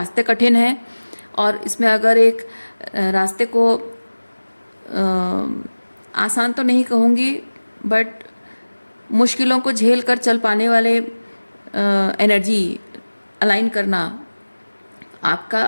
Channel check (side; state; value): both; inverted; correlation -1.00